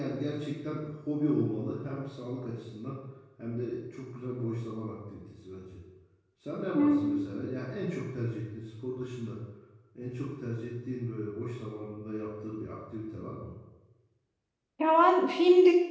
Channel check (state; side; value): identical; both; correlation 1.00